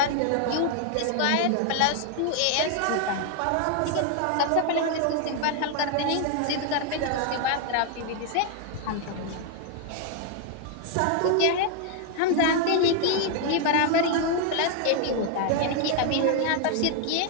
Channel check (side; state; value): both; different; correlation 0.00